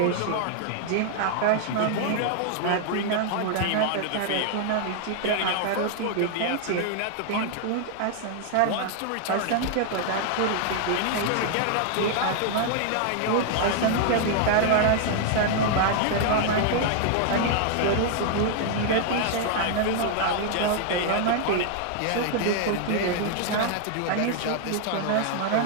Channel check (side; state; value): both; different; correlation 0.00